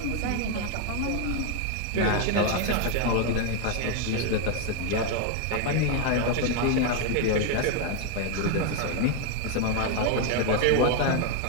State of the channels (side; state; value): both; different; correlation 0.01